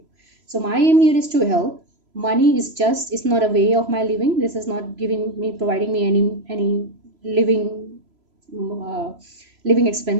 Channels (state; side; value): late; left; 3.0 ms